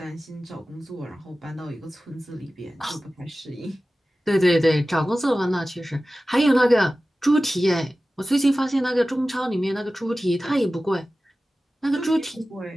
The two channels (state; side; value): normal; both; correlation 0.96